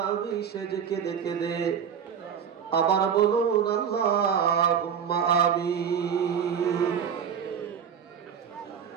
সেজে কেঁদে কেঁদে আবার বলুন আল্লাহুম্মা আমিন।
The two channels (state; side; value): quieter; left; 7.7 dB